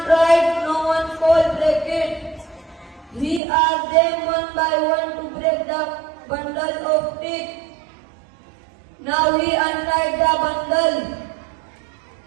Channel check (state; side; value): drops out; left; at 3.4 s